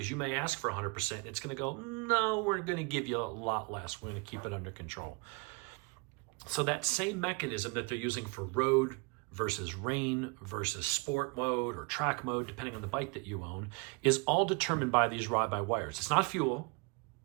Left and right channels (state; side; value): quieter; left; 30.1 dB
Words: you may ask for 100% and it's going to go, no, we're going to give you a lot less. We're going to keep it under control. So that same mechanism that they're using for road versus rain versus sport mode or track mode, depending on the bike that you own, is all determined by these ride-by-wires. It's not fuel,